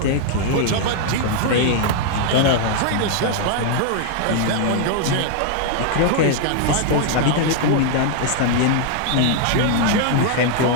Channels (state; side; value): different; both; correlation 0.00